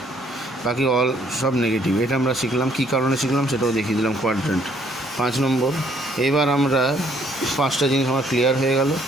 বাকি অল সব নেগেটিভ। এটা আমরা শিখলাম। কী কারণে শিখলাম সেটাও দেখিয়ে দিলাম। কোয়াড্রেন্ট 5 নম্বর। এবার আমরা 5টা জিনিস আমার ক্লিয়ার হয়ে গেল।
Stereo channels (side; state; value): both; normal; correlation 0.65